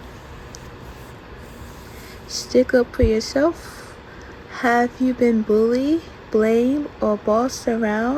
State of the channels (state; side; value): identical; both; correlation 1.00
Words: Stick up for yourself. Have you been bullied, blamed, or bossed